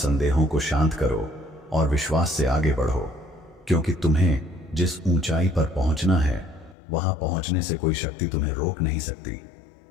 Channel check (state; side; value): drops out; right; at 6.8 s